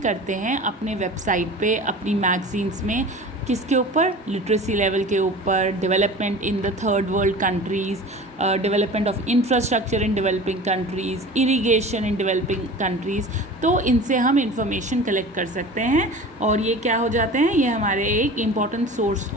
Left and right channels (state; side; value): normal; both; correlation 0.38